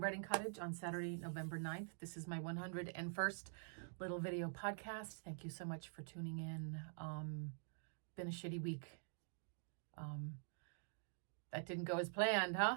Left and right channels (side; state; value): left; silent; digital silence